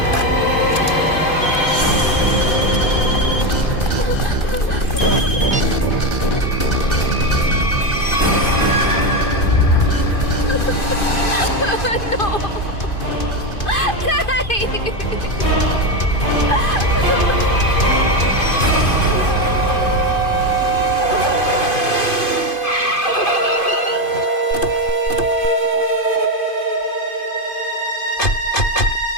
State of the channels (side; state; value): right; late; 2.5 ms